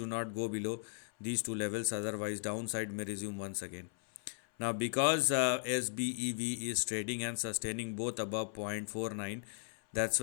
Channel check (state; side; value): silent; right; 53 dB below the other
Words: not go below these two levels, otherwise downside may resume once again. Now, because SBEV is trading and sustaining both above 0.49, that's